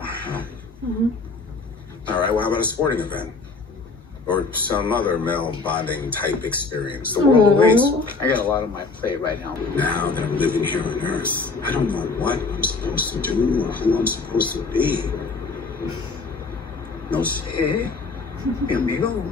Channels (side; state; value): right; quieter; 4.0 dB